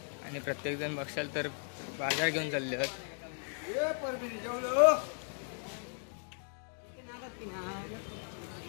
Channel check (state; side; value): silent; right; 54 dB below the other